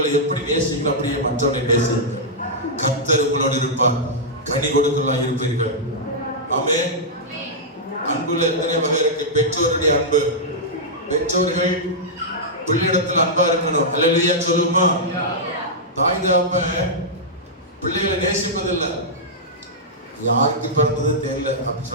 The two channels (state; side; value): normal; both; correlation -0.10